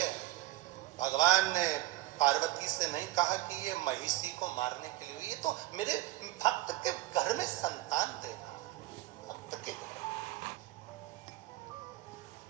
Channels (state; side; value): quieter; left; 16.9 dB